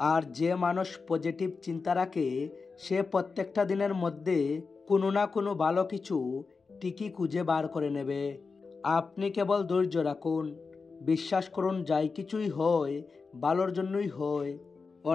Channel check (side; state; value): right; quieter; 4.6 dB